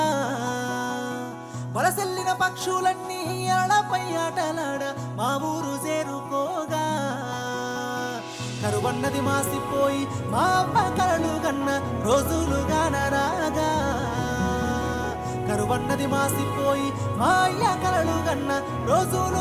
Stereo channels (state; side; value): identical; both; correlation 1.00